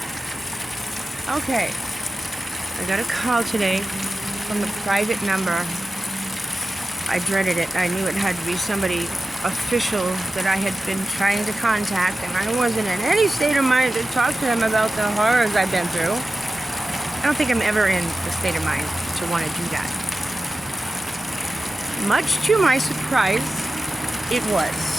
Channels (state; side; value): normal; both; correlation 0.94